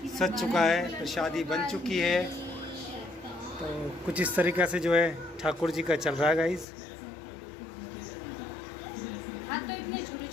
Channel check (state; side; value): drops out; right; at 6.7 s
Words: सज चुका है, प्रसादी बन चुकी है। तो कुछ इस तरीक़े से जो है ठाकुर जी का चल रहा है गाइस। हाथ तो इतने छोटे